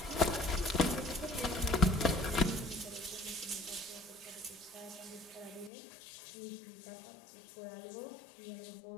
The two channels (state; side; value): drops out; right; at 5.7 s